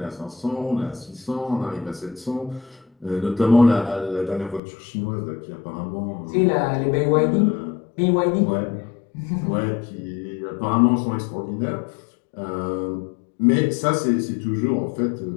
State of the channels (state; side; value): drops out; right; at 4.6 s